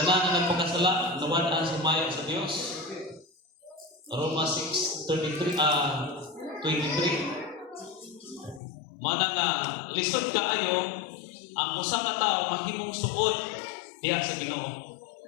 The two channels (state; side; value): drops out; right; at 8.6 s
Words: tanan na nagpakasala, nawala sumayo sa Dios. Roma 6:23 23. Mana nga lisod kaayo ang usa ka tawo mahimong suod diha sa Ginoo.